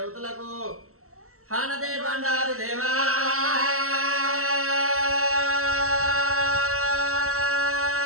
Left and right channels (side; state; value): left; late; 0.63 ms